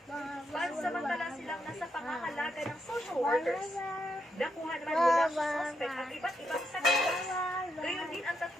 Pansamantala silang nasa pangangalaga ng social workers. Nakuha naman mula sa suspect ang iba't ibang sakitas. Gayon din ang 3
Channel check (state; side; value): normal; both; correlation 0.80